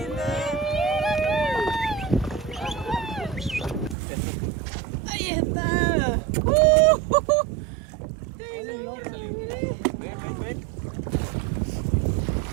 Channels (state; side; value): drops out; left; at 4.0 s